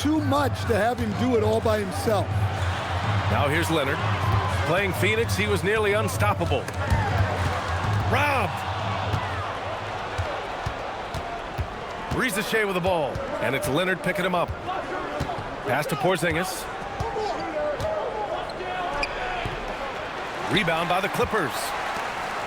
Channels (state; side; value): identical; both; correlation 1.00